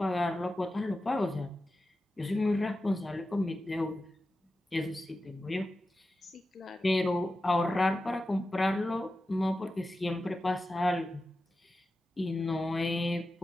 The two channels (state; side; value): normal; both; correlation 0.93